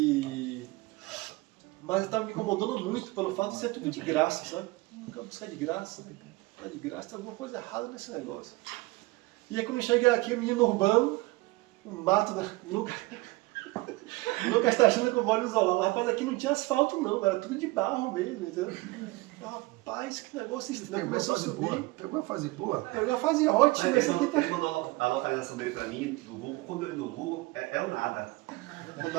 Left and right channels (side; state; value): left; quieter; 22.0 dB